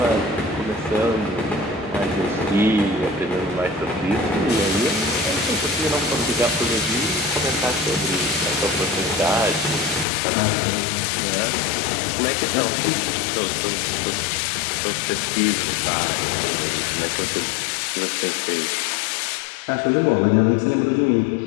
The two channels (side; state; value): right; drops out; at 10.1 s